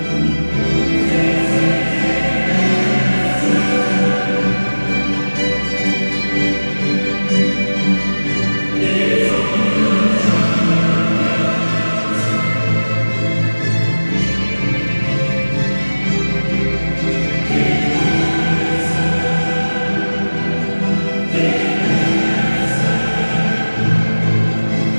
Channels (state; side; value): inverted; both; correlation -1.00